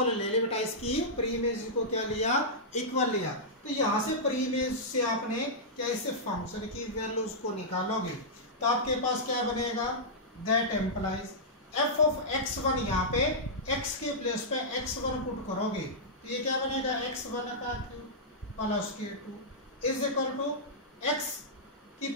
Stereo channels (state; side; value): normal; both; correlation -0.12